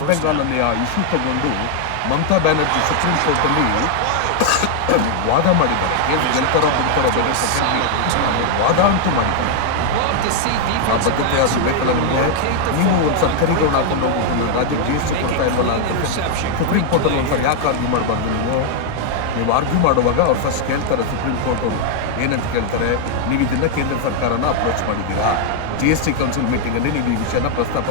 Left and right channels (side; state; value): both; different; correlation 0.00